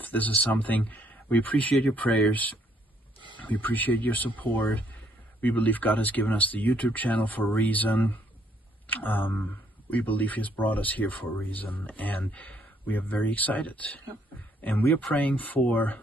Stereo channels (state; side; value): normal; both; correlation 0.68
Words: this is something. We appreciate your prayers. We appreciate your support. We believe God has given us the YouTube channel for a reason. We believe He has brought us here for a reason, and we are very excited. Yep. And we are praying for